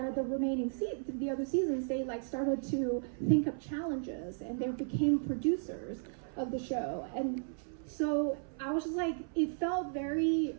the remaining the other seasons. They like started to think of challenges, and they became producers of the show. And so I was just like, it felt very,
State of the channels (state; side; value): silent; left; 55 dB below the other